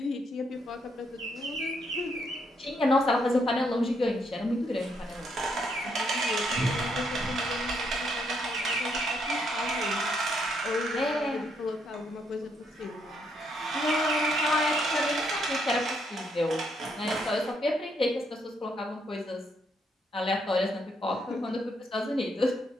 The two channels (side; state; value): both; normal; correlation 0.75